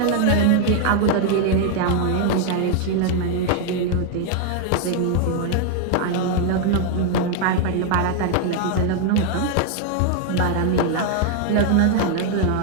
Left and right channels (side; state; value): both; different; correlation 0.00